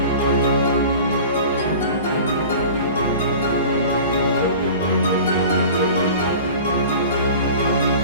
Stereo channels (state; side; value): inverted; both; correlation -0.40